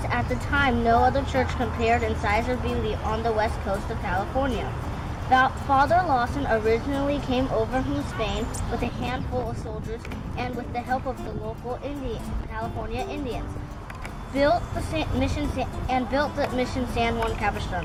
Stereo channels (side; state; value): both; identical; correlation 1.00